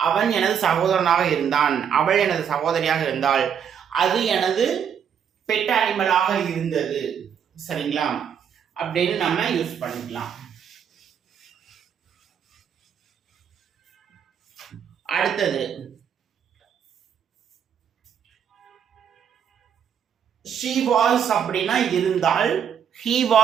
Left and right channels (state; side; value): quieter; left; 8.0 dB